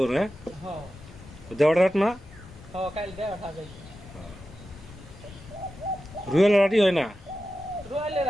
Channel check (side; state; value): both; normal; correlation 0.93